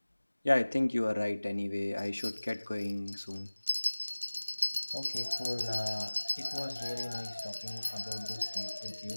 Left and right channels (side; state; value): both; inverted; correlation -1.00